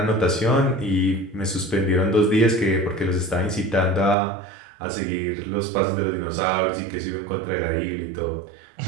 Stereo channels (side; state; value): left; drops out; at 4.2 s